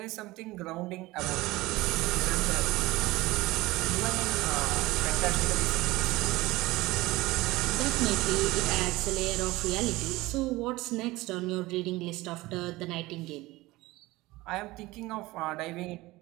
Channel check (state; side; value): quieter; left; 19.8 dB